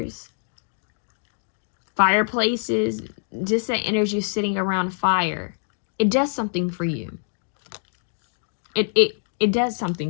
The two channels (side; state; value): right; silent; 62 dB below the other